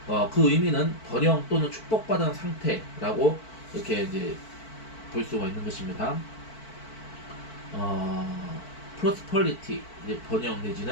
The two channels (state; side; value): late; right; 4.5 ms